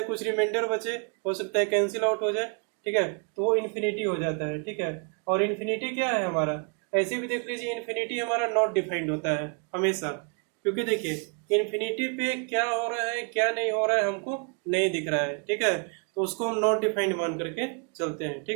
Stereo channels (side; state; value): left; quieter; 37.1 dB